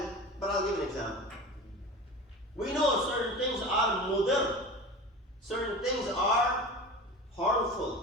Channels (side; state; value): both; normal; correlation 0.33